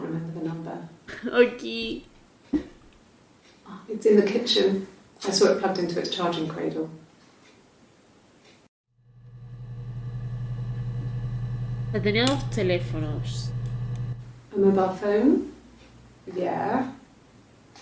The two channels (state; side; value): identical; both; correlation 1.00